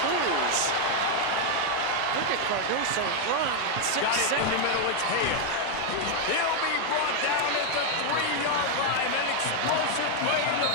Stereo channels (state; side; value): different; both; correlation 0.00